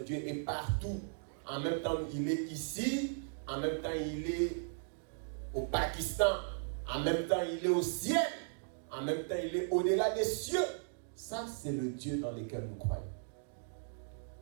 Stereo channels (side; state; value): left; silent; digital silence